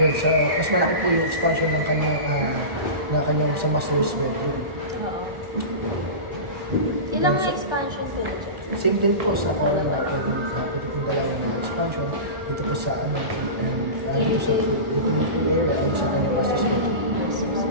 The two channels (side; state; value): left; late; 1.4 ms